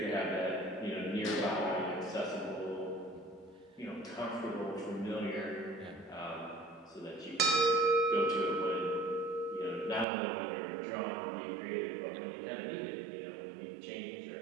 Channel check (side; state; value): left; drops out; at 10.1 s